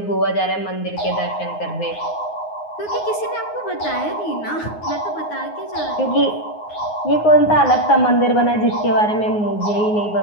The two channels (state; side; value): late; right; 9.6 ms